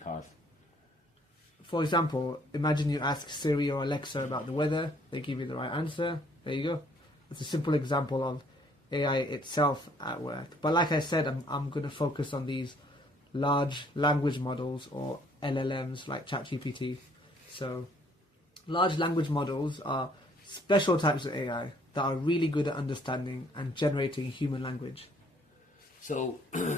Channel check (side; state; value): both; normal; correlation 0.62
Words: For example, imagine you ask Siri or Alexa about the weather, they give you the right answer, there you go. It's a simple example of AI itself at work. But like I said, I'm going to focus on these large language models, or LLMs, like ChatGPT. So large language models are special types of AI that are really good at understanding and generating human language. So